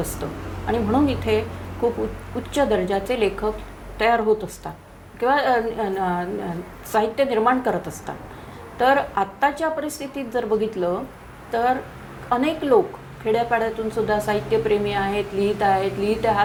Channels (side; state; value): both; identical; correlation 1.00